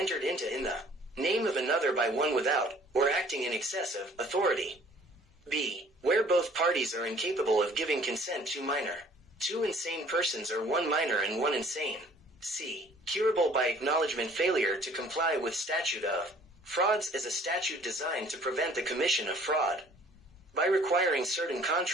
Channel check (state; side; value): normal; both; correlation 0.55